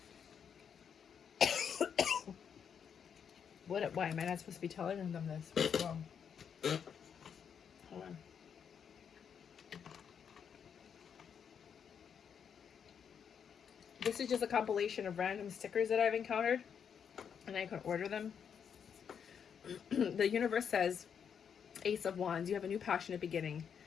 Why am I not supposed to be telling them this? What's wrong? Hold on. This is just a compilation of random stickers that I've encountered, and I can order them. The universe says, Ace of Wands, you have a new passionate beginning.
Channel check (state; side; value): quieter; right; 7.5 dB